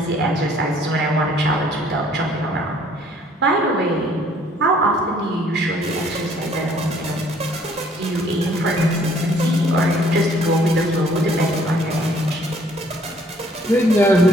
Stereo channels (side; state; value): both; normal; correlation 0.60